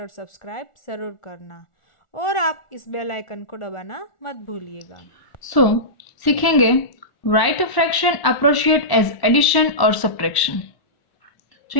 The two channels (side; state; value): right; late; 1.1 ms